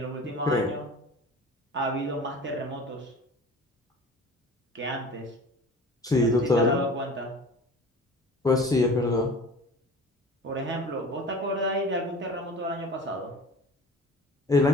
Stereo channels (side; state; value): both; normal; correlation 0.41